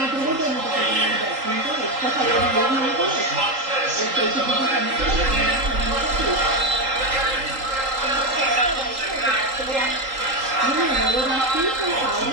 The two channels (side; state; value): left; late; 3.8 ms